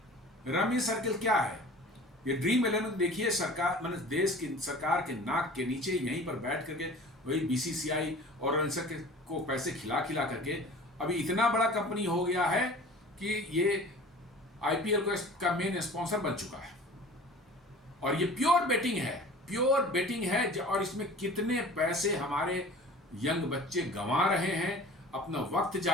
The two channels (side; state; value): both; normal; correlation 0.43